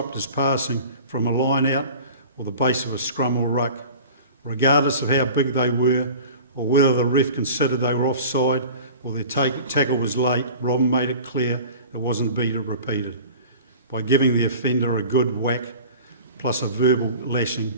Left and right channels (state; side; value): inverted; both; correlation -0.40